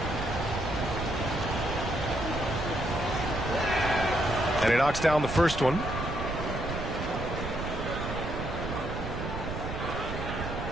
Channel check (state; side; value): noise; right; rumble, 5 dB below the sound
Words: And he knocks down the first one.